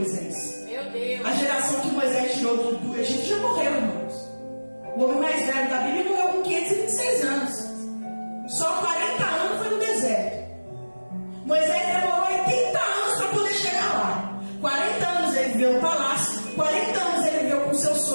Meu Deus! A geração que Moisés tirou do Egito já morreu, irmãos. O homem mais velho da Bíblia morreu com 526 anos. Só 40 anos foi no deserto. Moisés demorou 80 anos para poder chegar lá. 40 anos ele viveu no palácio. 40 anos ele viveu com seu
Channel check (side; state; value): both; inverted; correlation -1.00